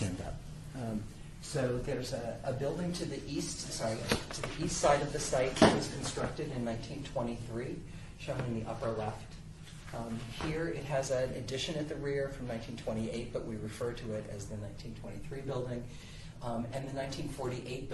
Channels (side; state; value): both; identical; correlation 1.00